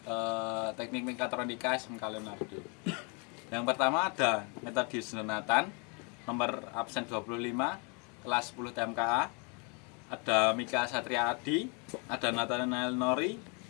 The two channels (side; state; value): right; quieter; 34.3 dB